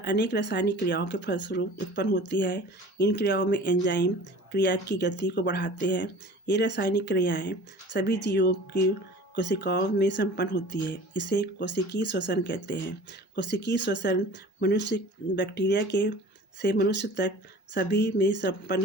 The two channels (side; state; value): both; normal; correlation 0.42